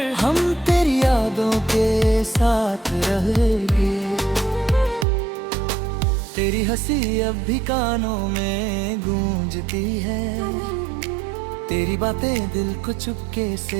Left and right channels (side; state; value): left; drops out; at 5.1 s